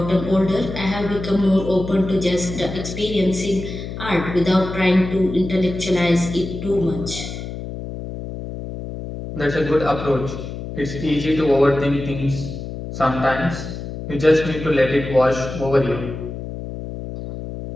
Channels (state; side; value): noise; left; hum, 8 dB below the sound